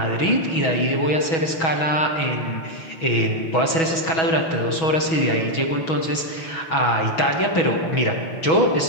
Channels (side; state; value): right; late; 6.2 ms